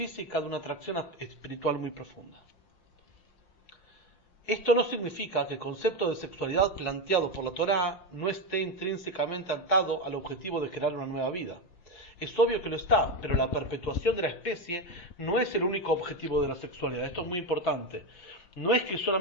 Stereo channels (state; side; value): late; right; 5.5 ms